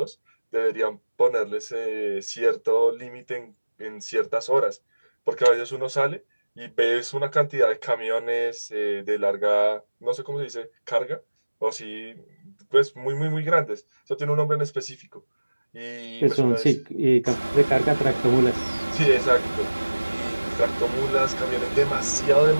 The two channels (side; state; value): both; inverted; correlation -1.00